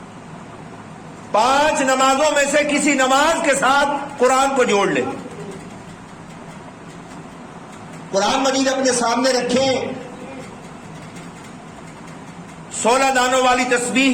5 نمازوں میں سے کسی نماز کے ساتھ قرآن کو جوڑ لیں. قرآن مجید اپنے سامنے رکھیں، 16 دانوں والی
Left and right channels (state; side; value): identical; both; correlation 1.00